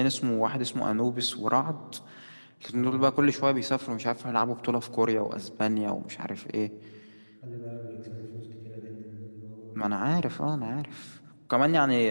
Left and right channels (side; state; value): both; inverted; correlation -1.00